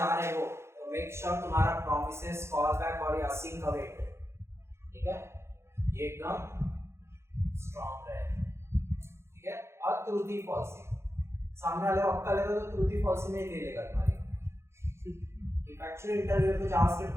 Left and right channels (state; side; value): late; left; 0.13 ms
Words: रहे हो तो मेक श्योर तुम्हारा प्रॉमिसेस, कॉल बैक और असिंक अवेट, ठीक है, ये एकदम स्ट्रॉन्ग रहे, ठीक है। और ट्रूथी फॉल्सी, सामने वाले वक्त लेगा तो ट्रूथी फॉल्सी में ही ले लेगा तुम्हारी। इफ एक्चुअली इंटरव्यू को जावास्क्रिप्ट